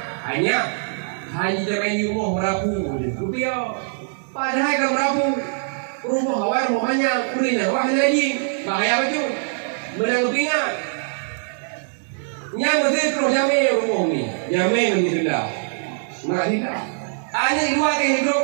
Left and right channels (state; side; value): silent; left; 64 dB below the other